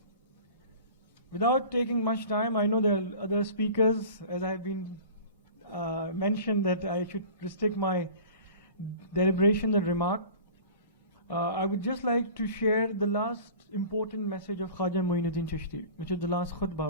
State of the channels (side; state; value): both; inverted; correlation -0.40